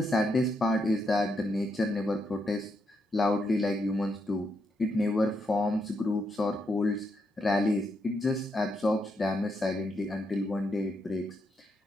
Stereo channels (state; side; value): normal; both; correlation 0.80